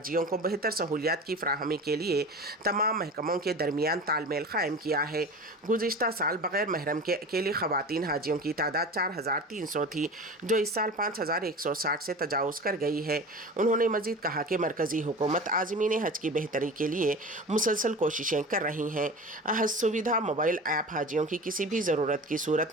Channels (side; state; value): both; normal; correlation 0.34